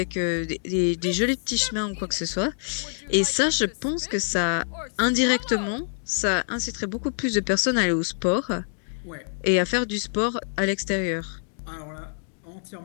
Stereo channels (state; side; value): silent; right; digital silence